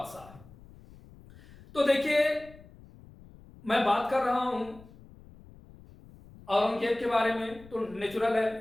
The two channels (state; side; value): noise; left; rumble, 22 dB below the sound